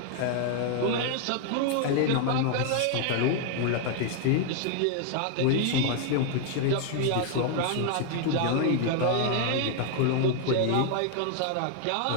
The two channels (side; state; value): both; different; correlation 0.00